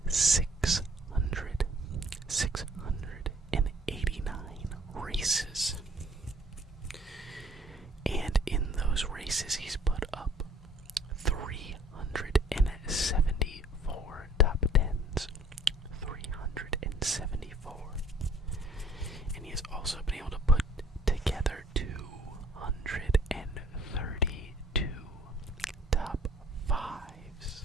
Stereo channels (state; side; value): normal; both; correlation 0.57